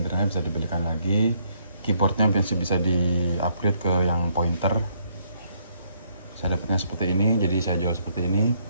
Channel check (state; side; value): inverted; both; correlation -0.70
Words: bisa dibelikan lagi. Keyboardnya masih bisa di upgrade ke yang pointer. Saya dapatnya seperti ini, jadi saya jual seperti ini.